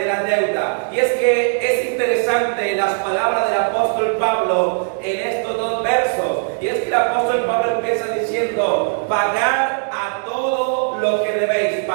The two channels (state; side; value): silent; left; digital silence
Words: la deuda. Y es que es interesante las palabras del apóstol Pablo en estos dos versos. Y es que el apóstol Pablo empieza diciendo: pagad a todo lo que debéis,